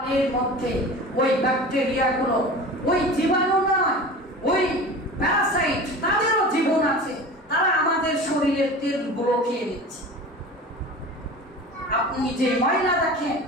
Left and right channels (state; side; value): normal; both; correlation 0.35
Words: এর মধ্যে ওই ব্যাকটেরিয়াগুলো, ওই জীবাণু নয়, ওই প্যারাসাইট, তাদেরও জীবন আছে। তারা আমাদের শরীরের তেলগুলো খেয়ে নিচ্ছে। আপনি যে ময়লা দেখেন,